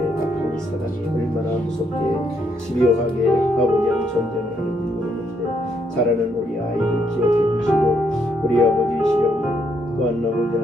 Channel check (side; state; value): both; normal; correlation 0.74